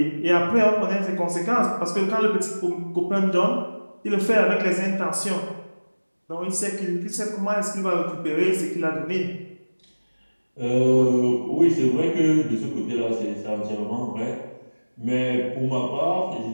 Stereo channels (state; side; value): inverted; both; correlation -1.00